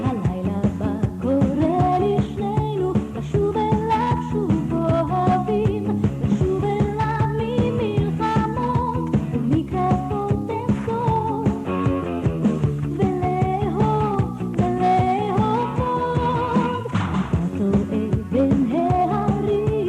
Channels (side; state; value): both; identical; correlation 1.00